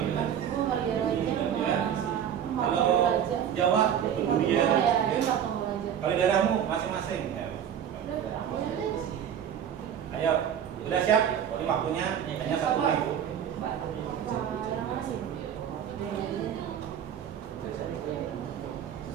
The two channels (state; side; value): quieter; left; 9.1 dB